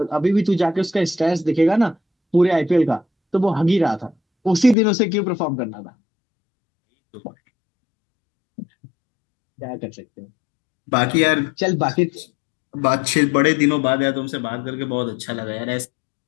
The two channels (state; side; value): drops out; right; at 4.8 s